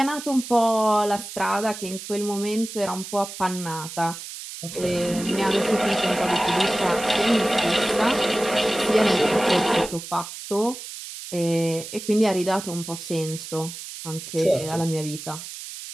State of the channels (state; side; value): noise; right; hiss, 11 dB below the sound